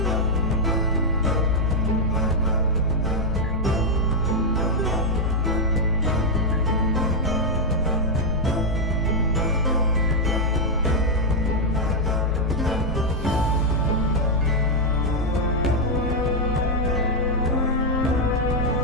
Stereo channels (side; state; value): both; normal; correlation -0.01